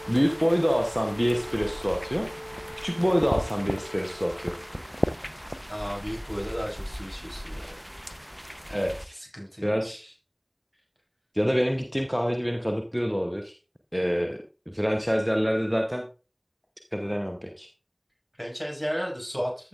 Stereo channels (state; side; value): identical; both; correlation 1.00